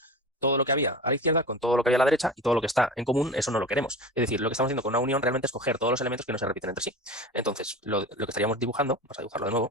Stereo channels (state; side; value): normal; both; correlation 0.32